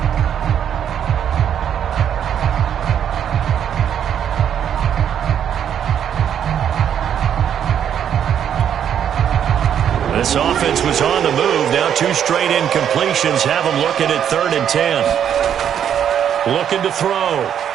This offense was on the move. Now 2 straight incompletions have them looking at 3rd and 10. Looking to throw.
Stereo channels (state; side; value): quieter; left; 9.1 dB